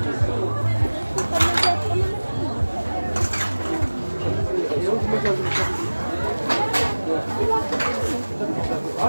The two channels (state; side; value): inverted; both; correlation -1.00